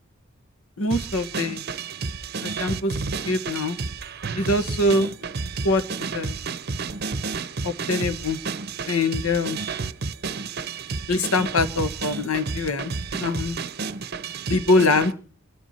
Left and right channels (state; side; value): normal; both; correlation 0.34